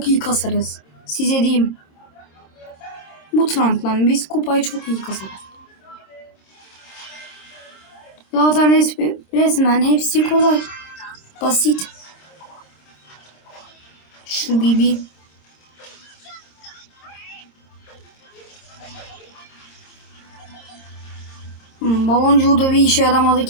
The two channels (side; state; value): right; late; 26 ms